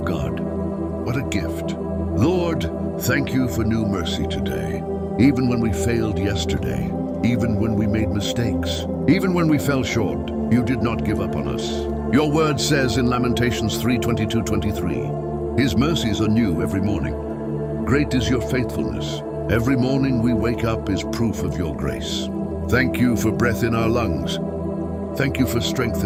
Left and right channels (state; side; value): identical; both; correlation 1.00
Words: God. What a gift. Lord, thank you for new mercy today. Even when we failed yesterday, even when we made mistakes, even when we fell short, you did not give up on us. Your word says in Lamentations 3:22-23, his mercies are new every morning. Great is your faithfulness. Every morning we wake up is proof of your grace. Thank you for breath in our lungs. Thank you for strength